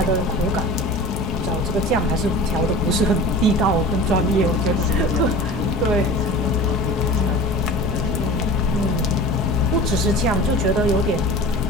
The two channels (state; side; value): normal; both; correlation 0.37